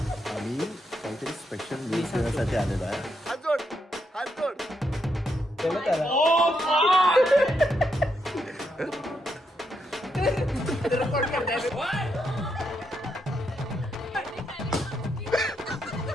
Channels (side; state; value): both; normal; correlation 0.80